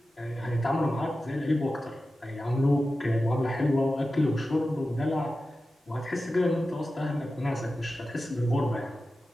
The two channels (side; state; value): both; normal; correlation 0.93